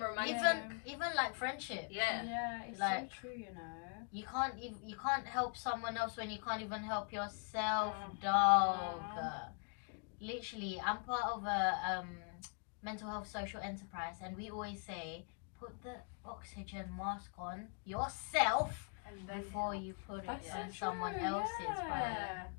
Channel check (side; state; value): right; quieter; 37.7 dB